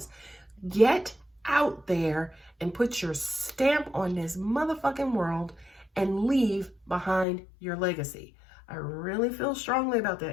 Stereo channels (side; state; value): right; drops out; at 7.2 s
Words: Get out there and put your stamp on this motherfucking world and leave behind your legacy. I really feel strongly about